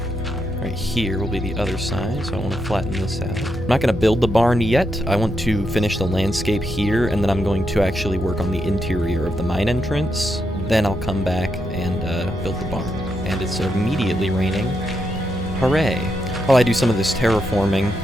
Right here will be the other side, so I want to flatten this out. I'm not going to build the barn yet. I want to finish the landscape here, and then I'm going to actually work on the interior of the mine entrance. Then I'll come back and build the barn. And it's immediately raining. Hooray! While I do some of this terraforming,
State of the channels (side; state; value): both; normal; correlation 0.82